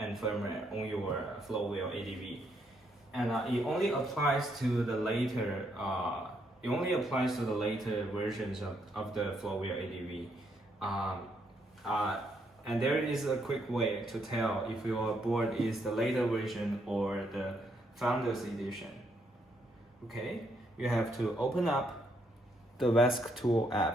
firmware on your Floatwheel ADV, and it only applies to the later versions of the Floatwheel ADV. And there is a quick way to tell if your board is the later version or the Founders Edition. Okay, you have to open up the VESC Tool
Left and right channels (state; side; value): normal; both; correlation 0.74